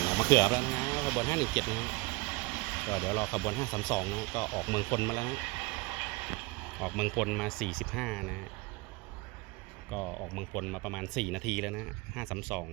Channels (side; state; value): left; quieter; 24.3 dB